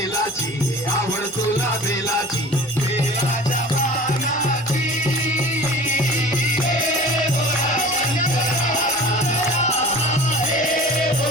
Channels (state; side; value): normal; both; correlation 0.41